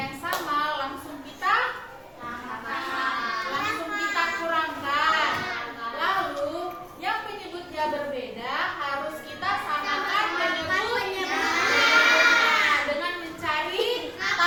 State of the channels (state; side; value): identical; both; correlation 1.00